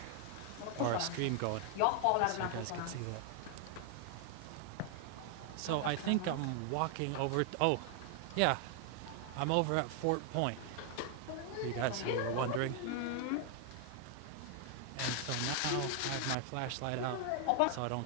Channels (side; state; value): both; different; correlation 0.00